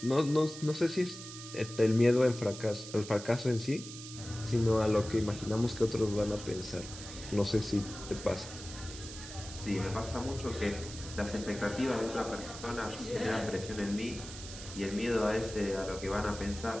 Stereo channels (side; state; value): right; noise; hiss, 12 dB below the sound